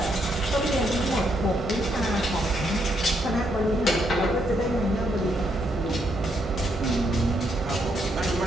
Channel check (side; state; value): both; normal; correlation 0.76